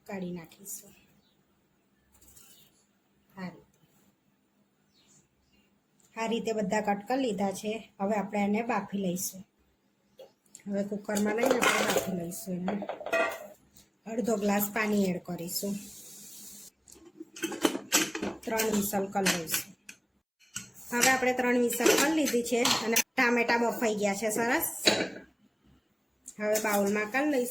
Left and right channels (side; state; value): both; identical; correlation 1.00